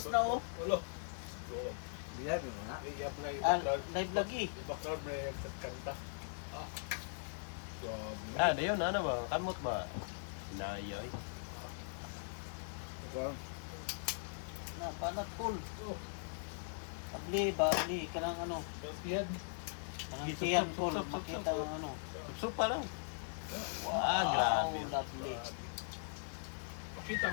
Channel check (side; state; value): right; silent; digital silence